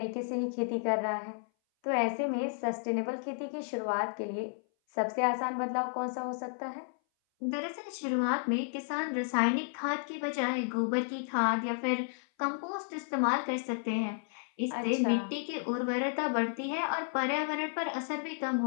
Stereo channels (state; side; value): silent; right; 56 dB below the other